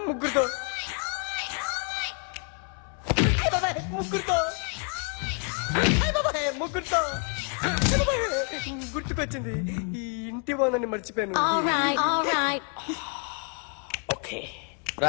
ముగ్గురుతో ముగ్గురుతో గుర్తుకొచ్చింది. ఈ ఇంటి బాగుందని మర్చిపోయాను. ఓకే.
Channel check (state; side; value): quieter; right; 39.4 dB